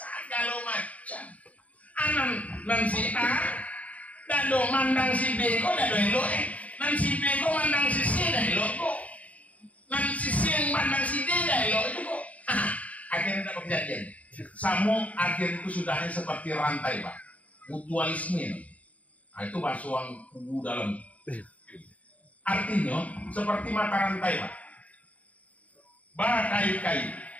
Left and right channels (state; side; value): late; right; 0.069 ms